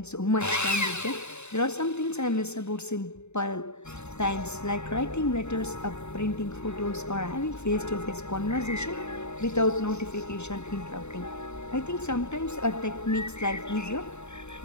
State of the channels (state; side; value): late; right; 0.82 ms